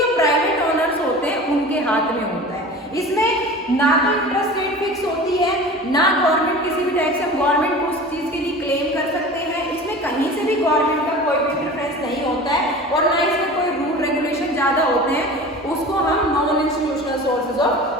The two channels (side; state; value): both; normal; correlation 0.37